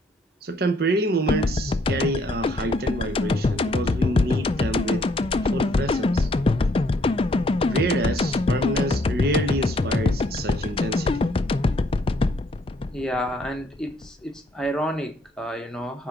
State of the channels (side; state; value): both; normal; correlation 0.67